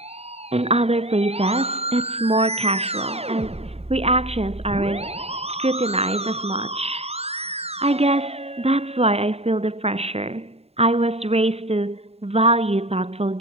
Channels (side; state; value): left; late; 0.30 ms